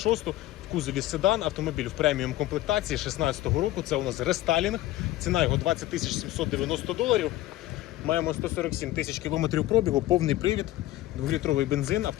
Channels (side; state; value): right; quieter; 15.5 dB